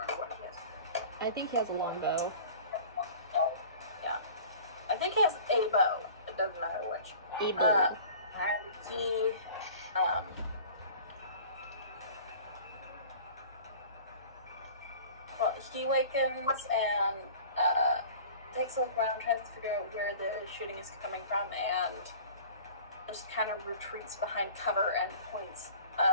what it is. I think he has a long bow. Yeah, I think he has a bow. It doesn't matter which. A bow. And he well, he wakens and takes a look around, tries to figure out where the shooting is coming from, and just kind of retreats behind cover and points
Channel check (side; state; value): both; inverted; correlation -0.43